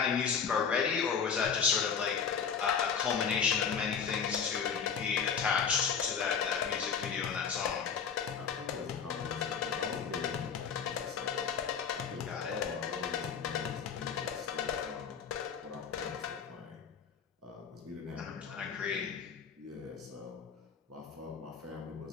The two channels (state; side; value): quieter; right; 6.7 dB